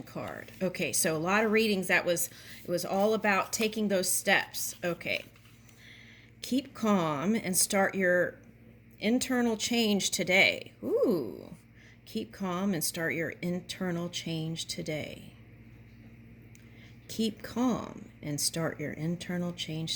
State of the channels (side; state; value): both; identical; correlation 1.00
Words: card. Okay, so a lot of readings it was all about taking those steps. Okay. Keep calm and start your internal change today. Ooh. Keep calm and start your internal change today. Keep calm and start your internal